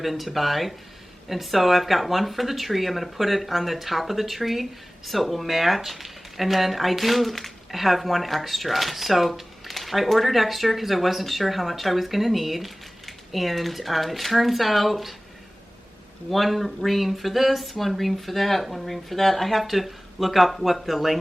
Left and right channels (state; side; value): normal; both; correlation 0.98